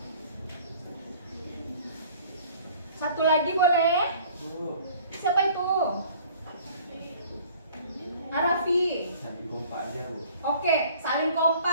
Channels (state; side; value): inverted; both; correlation -0.51